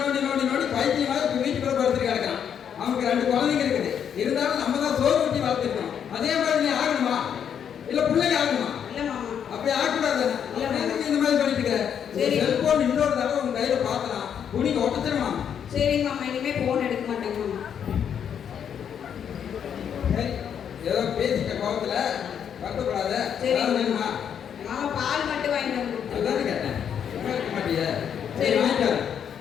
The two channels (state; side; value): quieter; right; 8.3 dB